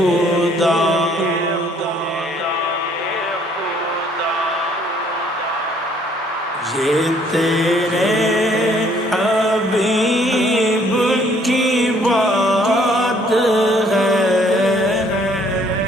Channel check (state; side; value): normal; both; correlation 0.62